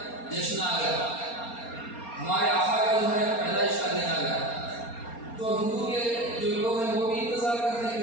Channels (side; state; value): right; late; 4.3 ms